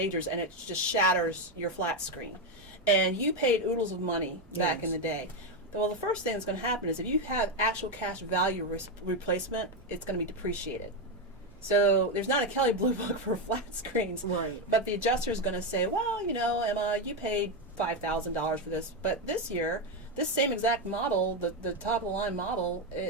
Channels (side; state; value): both; normal; correlation 0.08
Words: and it just shatters your flat screen. And you paid oodles of money back in the day. Well, the first thing that's going to happen is if you have actual cash value replacement, it's going to be depreciated. So there's not a Kelley Blue Book for flat screens. Right. But the adjuster is going to say, well, Emma, you paid $5,000 for this, but this year, this same exact model, the top of the line model,